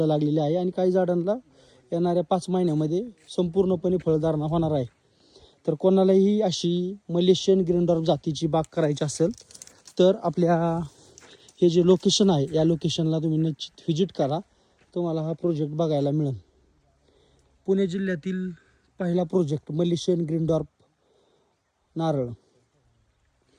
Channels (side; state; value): both; identical; correlation 1.00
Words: लागलेली आहे आणि काही झाडांना येणाऱ्या 5 महिन्यामध्ये संपूर्णपणे फळधारणा होणार आहे. तर कोणालाही अशी मलेशियन ग्रीन डॉर्फ जातीची बाग करायची असेल तर आपल्या हे जे लोकेशन आहे या लोकेशनला तुम्ही निश्चित व्हिजिट करा. तुम्हाला हा प्रोजेक्ट बघायला मिळेल. पुणे जिल्ह्यातील पहिला प्रोजेक्ट मलेशियन ग्रीन डॉर्फ नारळ.